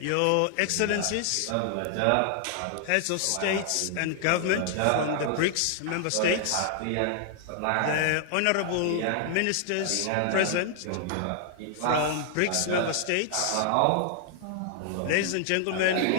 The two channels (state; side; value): different; both; correlation 0.00